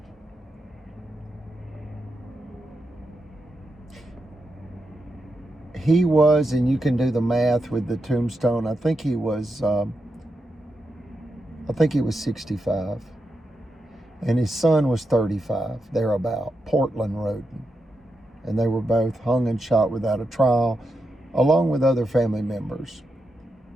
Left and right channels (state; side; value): normal; both; correlation 0.86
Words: He was, and you can do the math with the tombstone, I think he was 65. And his son was 35, thereabout, Portland Roden. And they were both hung and shot without a trial, along with other family members.